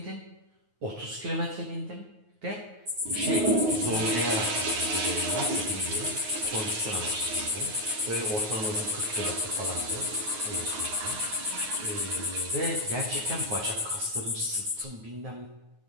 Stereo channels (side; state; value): left; late; 9.4 ms